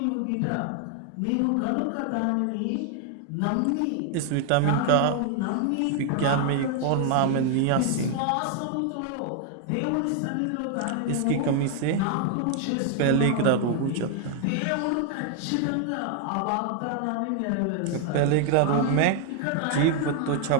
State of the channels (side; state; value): both; different; correlation 0.00